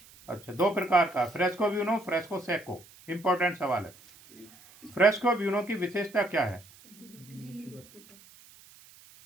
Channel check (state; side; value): noise; right; hiss, 24 dB below the sound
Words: अच्छा, 2 प्रकार का, fresco buono, fresco Seiko. Important सवाल है। फ्रेस्को ब्यूनो की विशेषता क्या है?